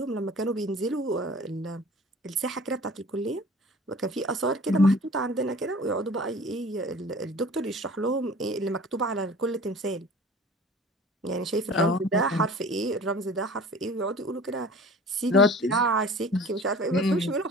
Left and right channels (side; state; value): both; normal; correlation 0.44